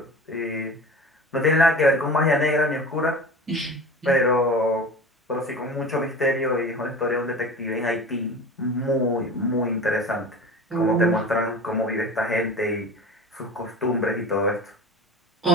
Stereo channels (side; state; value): both; normal; correlation 0.35